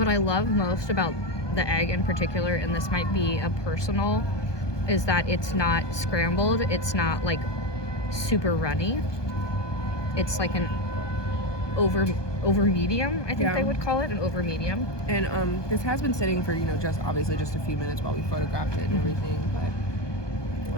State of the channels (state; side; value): late; right; 1.2 ms